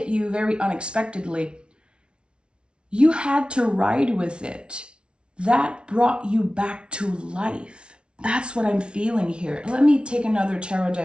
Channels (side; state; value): left; late; 0.057 ms